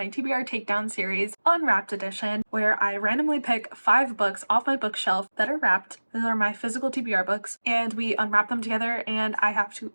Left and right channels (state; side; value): inverted; both; correlation -1.00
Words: TBR Takedown series, Unwrapped edition, where I randomly pick 5 books off my bookshelf that are wrapped. These are my physical TBR books, and we unwrap them together, and I have to